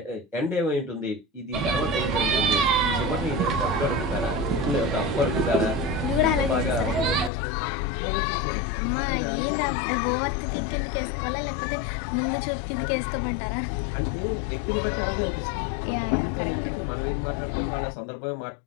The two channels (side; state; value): right; drops out; at 7.3 s